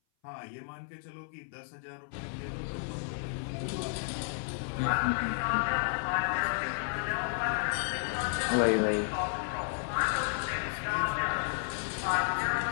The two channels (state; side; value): silent; right; 56 dB below the other